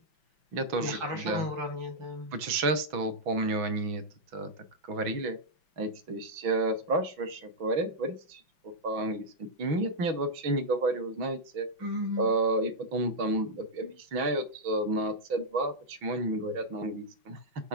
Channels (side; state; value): left; late; 6.1 ms